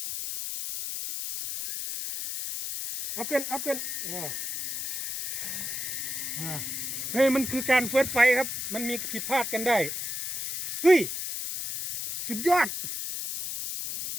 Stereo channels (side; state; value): left; noise; hiss, 4 dB below the sound